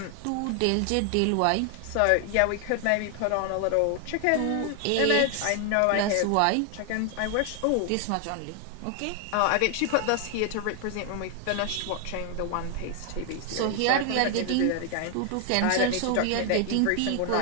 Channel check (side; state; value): both; different; correlation 0.00